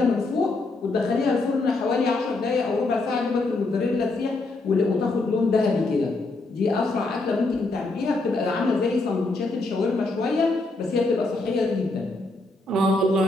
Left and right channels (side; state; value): right; quieter; 3.2 dB